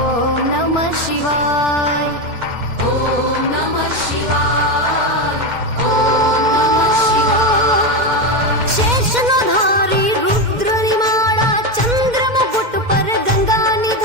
नमः शिवाय, ॐ नमः शिवाय, ॐ नमः शिवाय। शेषनो धारी रुद्र निमाड़ा चंद्र मुकुट पर गंगा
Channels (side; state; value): left; late; 2.1 ms